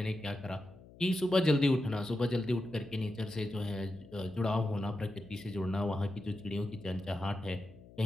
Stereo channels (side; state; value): left; noise; hum, 21 dB below the sound